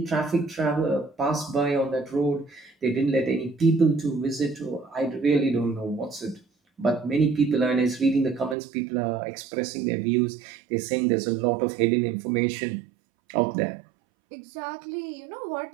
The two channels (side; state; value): left; drops out; at 8.6 s